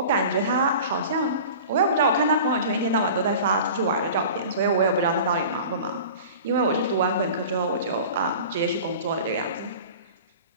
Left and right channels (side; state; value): both; inverted; correlation -0.39